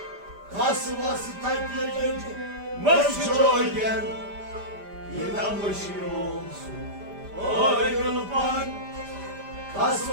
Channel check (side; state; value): left; late; 5.0 ms